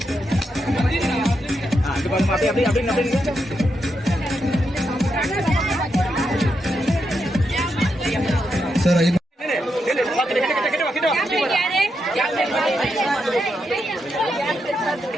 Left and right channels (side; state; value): both; normal; correlation 0.83